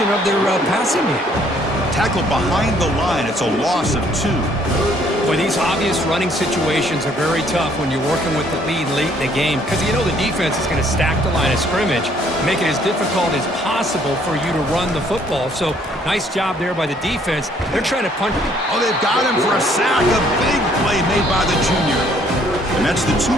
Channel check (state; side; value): normal; both; correlation 0.63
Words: of their passing game. Tackled behind the line. It's a loss of 2. Boy, these obvious running situations are very tough when you're working with the lead late in the game because you know the defense is going to stack the line of scrimmage, make it as difficult as possible for you to run the football. So, nice job there by the defense. They're trying to punch. Oh, they've got him for a sack. A big play made by the junior. And that's the